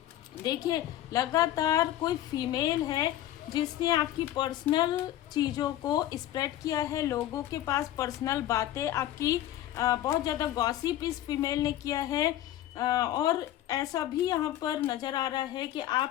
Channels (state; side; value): quieter; right; 13.2 dB